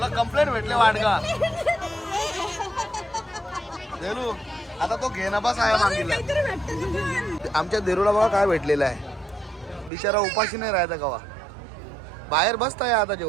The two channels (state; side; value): drops out; left; at 9.9 s